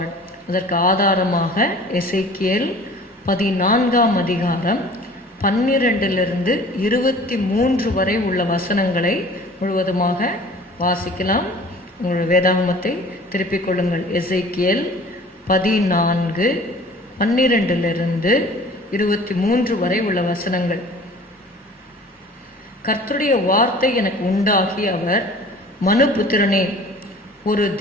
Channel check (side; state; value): both; normal; correlation 0.46